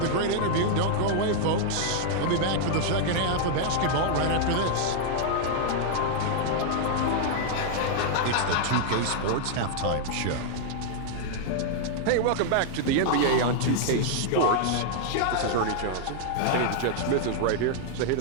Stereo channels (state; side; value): different; both; correlation -0.01